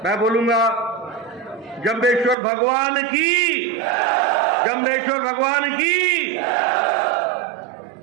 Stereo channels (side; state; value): left; drops out; at 2.4 s